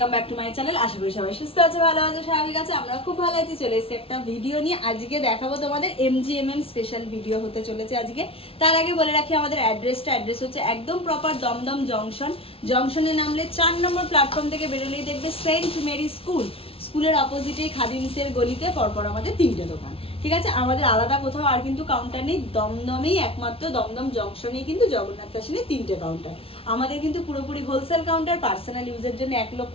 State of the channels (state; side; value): late; right; 0.27 ms